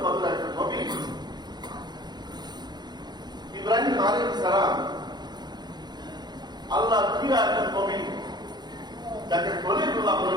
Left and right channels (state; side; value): late; left; 0.21 ms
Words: কদর একজন নবী। ইব্রাহিম আলাইহিস সালাম আল্লাহর প্রিয় একজন নবী, যাকে খলিলুল্লাহ